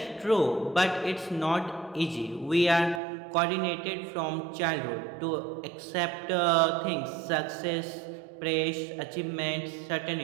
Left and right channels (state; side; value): drops out; left; at 3.0 s